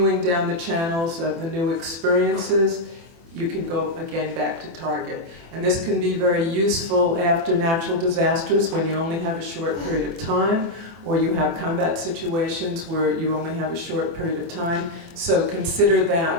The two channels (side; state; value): left; late; 24 ms